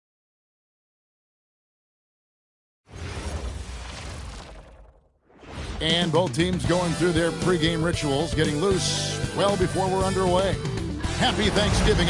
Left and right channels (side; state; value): both; identical; correlation 1.00